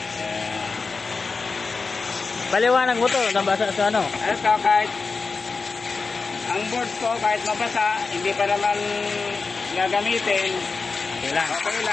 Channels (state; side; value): quieter; right; 4.4 dB